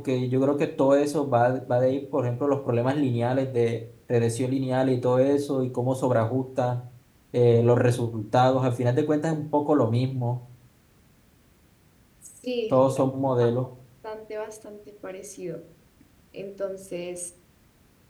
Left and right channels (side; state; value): both; identical; correlation 1.00